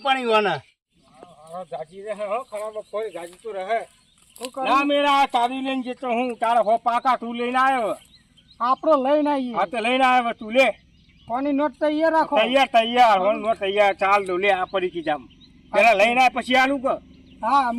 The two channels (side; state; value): both; identical; correlation 1.00